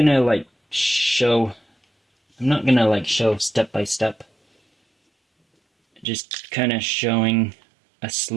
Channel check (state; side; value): drops out; left; at 6.1 s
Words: show step by step. Just kind of showing a